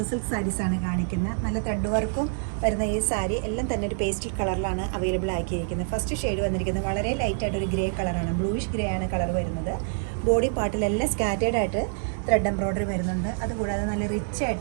സിൽക്ക് സാരീസാണ് കാണിക്കുന്നത്. നല്ല ത്രെഡ് വർക്കും വരുന്ന ഈ സാരി എല്ലാം തന്നെ ഒരു പേസ്റ്റൽ കളറിലാണ് അവൈലബിൾ ആക്കിയിരിക്കുന്നത്. ഫസ്റ്റ് ഷെയ്ഡ് വന്നിരിക്കുന്നത് വളരെ ലൈറ്റായിട്ടൊരു ഗ്രേ കളറാണ്, ബ്ലൂയിഷ് ഗ്രേ ആണ് കളർ വരുന്നത്. ബോഡി പാർട്ടിലെല്ലാം സ്കാറ്റേഡ് ആയിട്ട് ത്രെഡ് എംബ്രോയ്ഡറി വരുന്നുണ്ട്. അതുകൂടാതെ നല്ല റിച്ച്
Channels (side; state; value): left; silent; 61 dB below the other